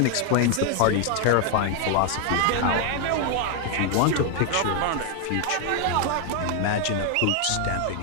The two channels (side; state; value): both; different; correlation 0.00